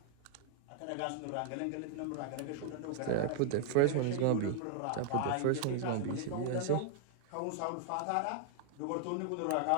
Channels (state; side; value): different; both; correlation 0.00